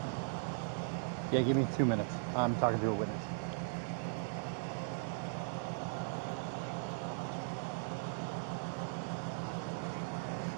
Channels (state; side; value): silent; left; digital silence